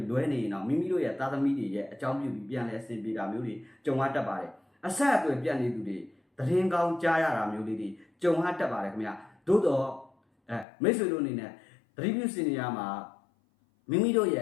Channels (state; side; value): drops out; right; at 10.7 s